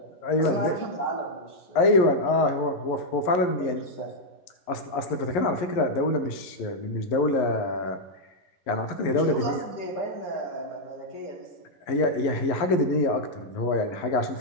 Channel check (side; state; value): right; late; 11 ms